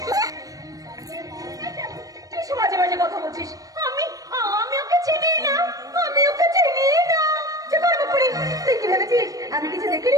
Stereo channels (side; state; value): left; late; 0.17 ms